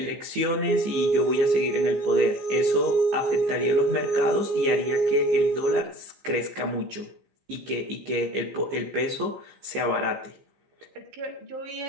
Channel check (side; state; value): left; late; 15 ms